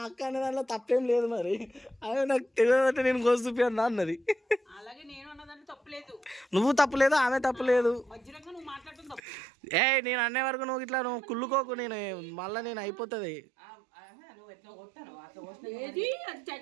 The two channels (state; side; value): drops out; left; at 9.2 s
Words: అక్క అనే దాంట్లో తప్పేం లేదు. మరి అదే నాకు తెలియదంటే నేను కోసి చూపియన్నా అన్నది. అలాగే నేను అన్నదాన్ని తప్పలేదు, నువ్వు తప్పలేదు, ఆమె తప్పలేదు. మధ్యలో నువ్వు మాట్లాడటం తప్పు. నేను అనే వరకు నువ్వు ఇట్లా నువ్వు కుళ్ళుకోకు, నేను మళ్ళీ నేను అయిపోతుంది. ఏది అది